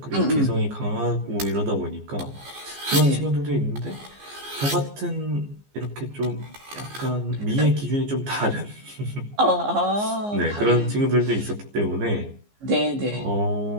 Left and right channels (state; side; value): late; left; 14 ms